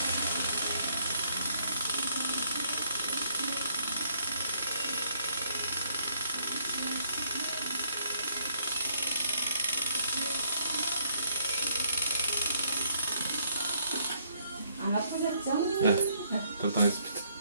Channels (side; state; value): both; inverted; correlation -0.68